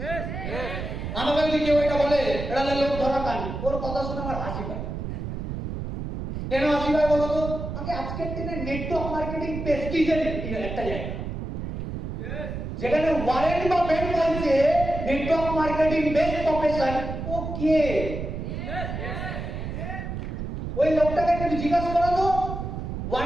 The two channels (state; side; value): noise; right; rumble, 5 dB below the sound